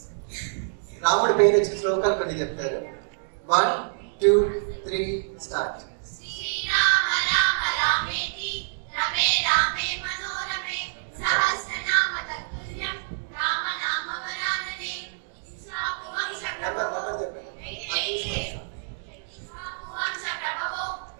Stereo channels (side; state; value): left; silent; digital silence